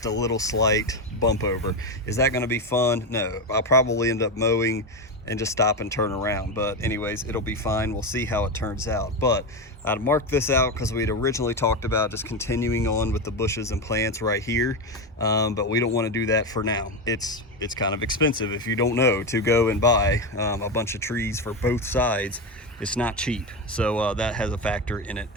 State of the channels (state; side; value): normal; both; correlation 0.14